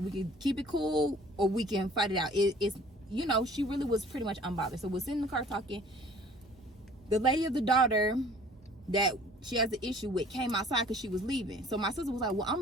can keep it cool or we can fight it out. It's, you know, she really was pretty much unbothered. So we're sitting in the car talking. The lady of the daughter that she has the issue with came outside because she was leaving. So my sister was like, well, I'm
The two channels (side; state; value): both; normal; correlation 0.51